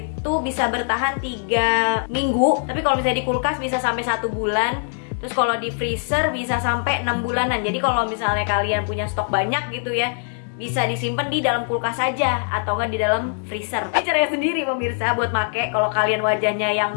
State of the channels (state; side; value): silent; right; digital silence